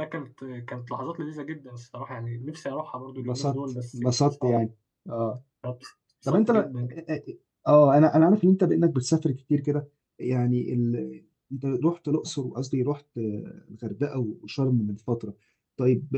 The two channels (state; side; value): identical; both; correlation 1.00